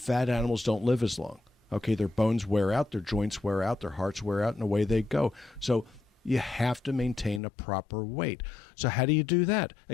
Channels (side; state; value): right; drops out; at 7.4 s